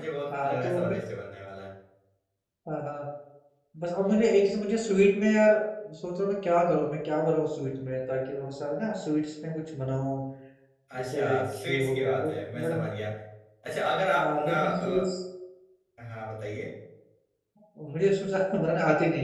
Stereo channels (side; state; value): both; identical; correlation 1.00